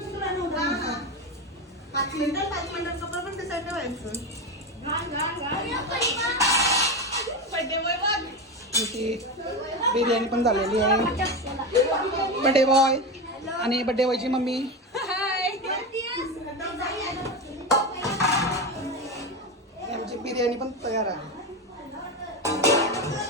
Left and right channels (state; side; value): normal; both; correlation 0.18